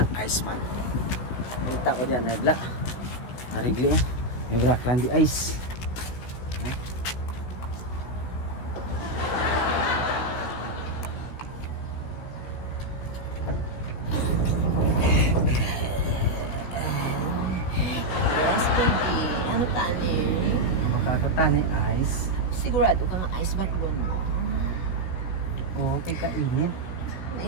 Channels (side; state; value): right; late; 16 ms